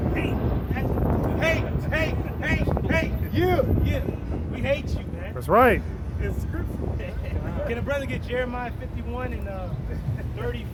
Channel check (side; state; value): both; identical; correlation 1.00